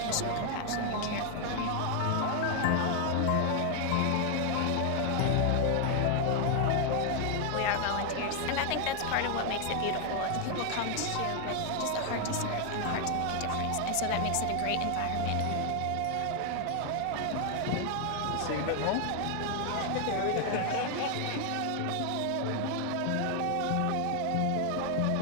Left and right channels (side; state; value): both; different; correlation 0.00